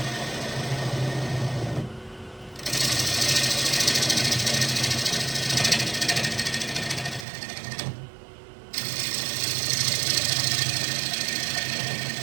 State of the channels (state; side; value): drops out; left; at 7.2 s